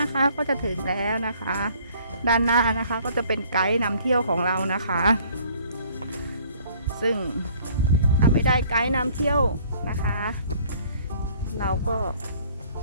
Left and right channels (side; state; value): both; inverted; correlation -0.57